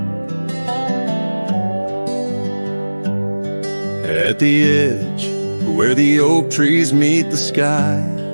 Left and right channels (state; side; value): inverted; both; correlation -1.00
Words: at the edge where the oak trees meet the sky,